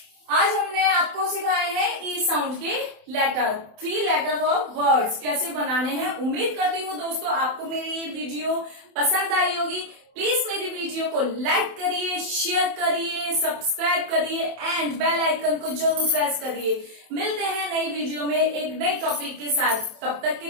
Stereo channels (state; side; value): late; left; 27 ms